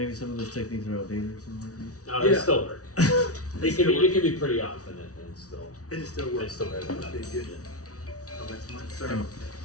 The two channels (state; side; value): late; right; 0.67 ms